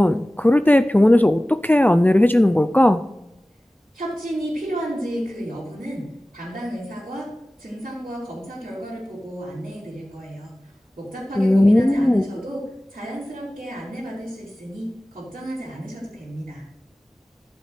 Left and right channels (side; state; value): both; normal; correlation 0.97